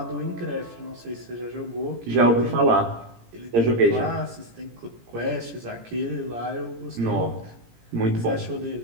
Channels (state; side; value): late; left; 17 ms